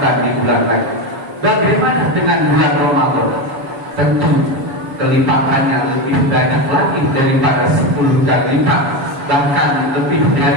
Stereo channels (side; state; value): left; late; 7.2 ms